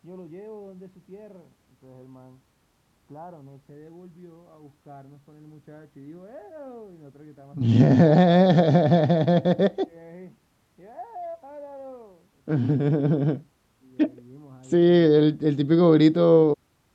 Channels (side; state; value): both; identical; correlation 1.00